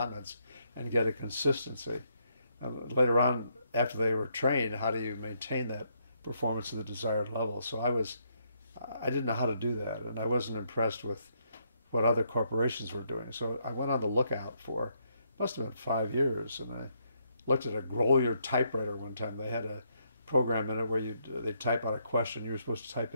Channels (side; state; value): both; inverted; correlation -0.75